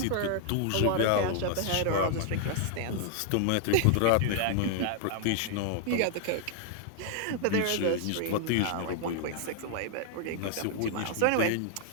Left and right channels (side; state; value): both; different; correlation -0.01